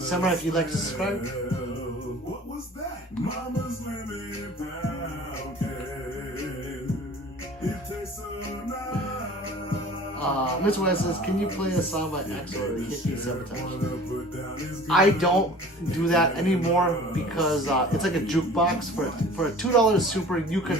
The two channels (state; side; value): normal; both; correlation 0.45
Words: if you'd like to subscribe. What was that? Mama's lemon pound cake. It tastes so nice. Mr. West says, can you play a song by Axel or Hit Me Sabotage? I don't do that anymore because it's like a jukebox. For a $2 super, you